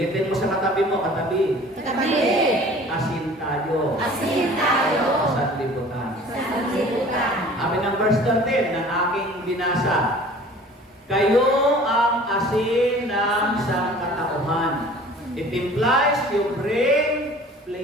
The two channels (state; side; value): normal; both; correlation 0.47